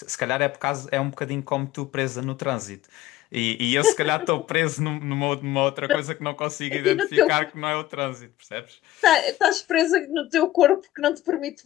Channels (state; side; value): quieter; right; 14.8 dB